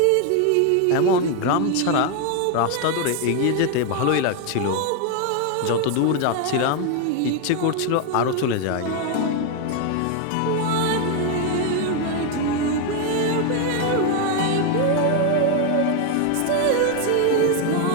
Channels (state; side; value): different; both; correlation 0.01